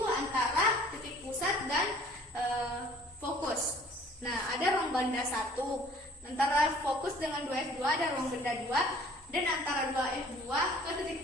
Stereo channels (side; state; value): both; normal; correlation 0.53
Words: antara titik pusat dan fokus. Nah, ada ruang benda 1. Antara fokus dengan 2F2 ada ruang benda 2, dan antara 2F2 ke